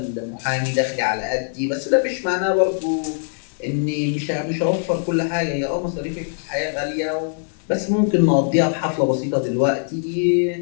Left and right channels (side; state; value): right; silent; 64 dB below the other